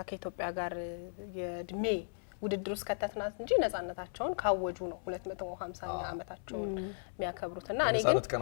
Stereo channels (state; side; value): silent; right; 54 dB below the other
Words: ከኢትዮጵያ ጋር የእድሜ ውድድር ውስጥ ከተትናት እንጂ ነጻነታቸውን ካወጁ ነው 250ኛ ዓመታቸውን የሚያከብሩትና እኔ ግን